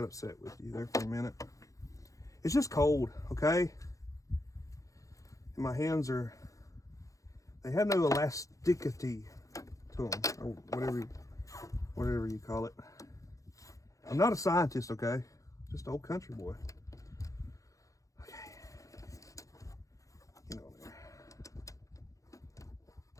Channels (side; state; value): right; late; 0.16 ms